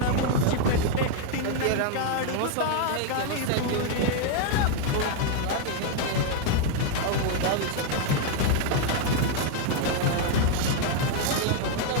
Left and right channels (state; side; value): different; both; correlation 0.00